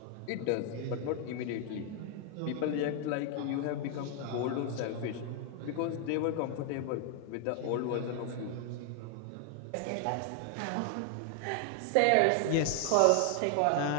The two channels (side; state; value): both; different; correlation 0.00